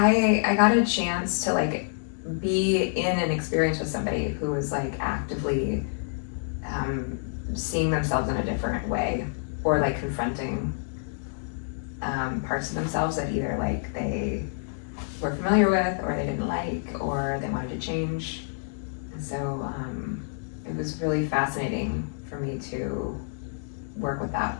got a chance to like be in an experience with somebody who was like actively seeing themselves in a different way, or like confronting parts of themselves that either like they were familiar with, or they didn't like, or they wanted to change. And so it was really fascinating for me to work with that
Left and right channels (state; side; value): silent; right; digital silence